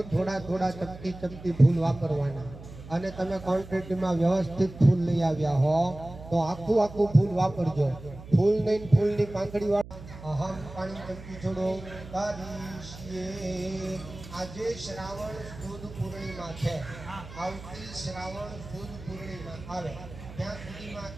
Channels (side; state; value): right; noise; hum, 15 dB below the sound